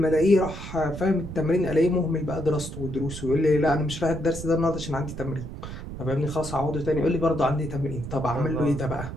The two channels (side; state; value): right; noise; rumble, 9 dB below the sound